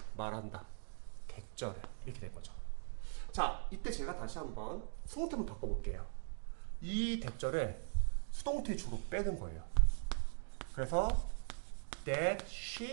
말한다, 대절을 이렇게 된 거죠. 자, 이때 제가 다시 한번 수동태 한번 바꿔볼게요. 이 대절을 수동태 주로 빼는 거예요. 그래서 that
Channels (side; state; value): left; silent; digital silence